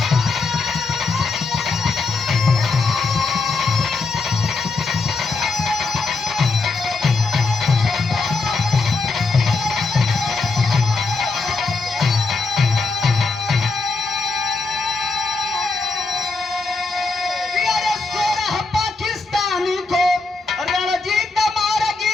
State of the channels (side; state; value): right; quieter; 3.9 dB